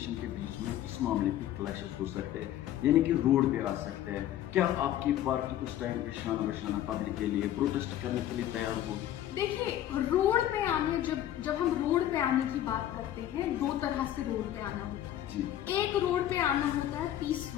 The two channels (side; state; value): right; quieter; 12.2 dB